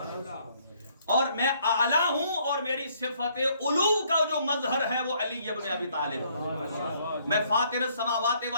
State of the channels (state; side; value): inverted; both; correlation -0.66